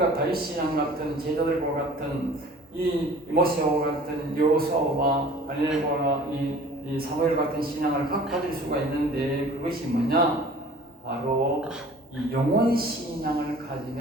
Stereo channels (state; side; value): normal; both; correlation 0.47